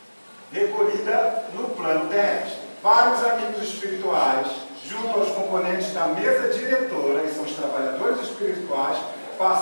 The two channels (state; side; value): inverted; both; correlation -1.00